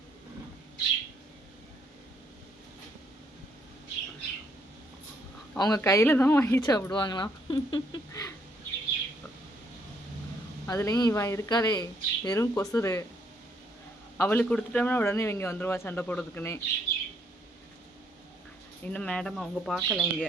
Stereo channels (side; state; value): both; normal; correlation 0.70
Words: அவங்க கையில் தான் வாங்கி சாப்பிடுவாங்களாம். அதுலேயும் இவன் இருக்காளே வெறும் கொசுறு. அவளுக்கு கொடுத்துட்டோம்னா உடனே இவங்க வந்துடுவா சண்டை போடுறதுக்குன்னே. இன்னும் மேடம் அவங்க பார்க்கல